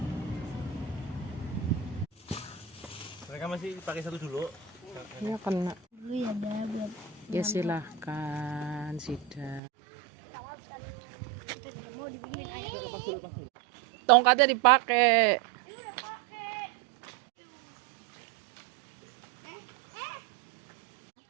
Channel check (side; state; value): left; drops out; at 9.6 s